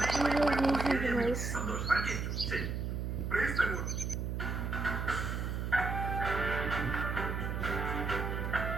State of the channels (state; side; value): noise; right; hum, 2 dB below the sound